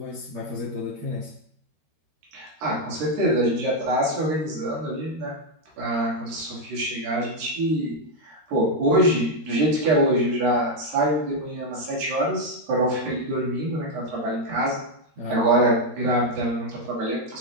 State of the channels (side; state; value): left; late; 13 ms